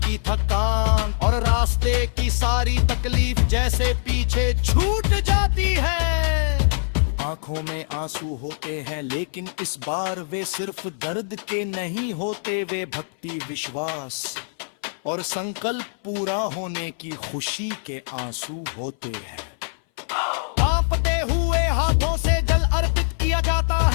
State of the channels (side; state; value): right; silent; 59 dB below the other